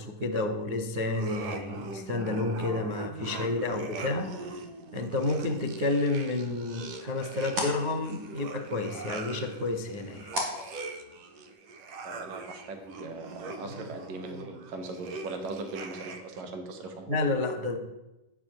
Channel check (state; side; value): late; left; 10 ms